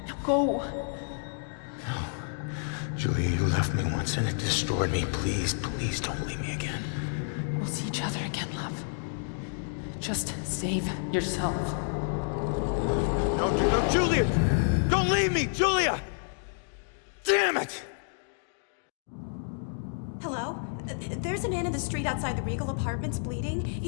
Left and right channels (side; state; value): right; silent; digital silence